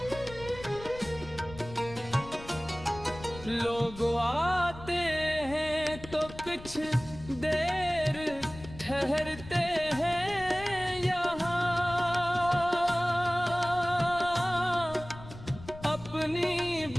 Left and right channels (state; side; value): noise; left; rumble, 15 dB below the sound